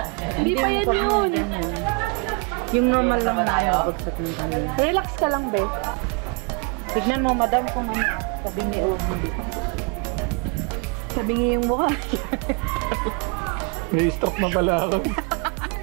Hindi pa yan yun. Yung normal lang tayo. Relax ka lang, be. Tignan mo, madam, kung ano. Sabi ni hindi. Sabi niya yung mukha. May stroke na pala ako.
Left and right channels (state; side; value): quieter; left; 33.4 dB